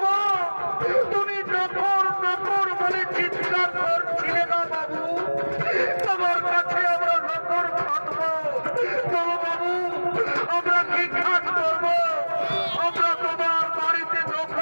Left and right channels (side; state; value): both; inverted; correlation -1.00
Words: গো, তুমি নকর নকর বলে চিৎকার করছিলে না বাবু? তোমার কাছে আমরা নকর খাটবো। চলো বাবু, আমরা কি কাজ করবো? আমরা তোমার বাড়িতে